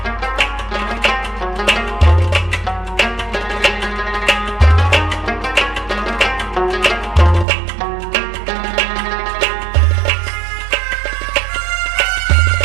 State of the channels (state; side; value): drops out; left; at 7.5 s